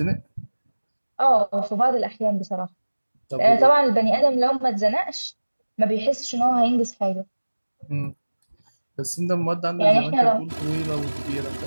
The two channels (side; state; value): both; inverted; correlation -1.00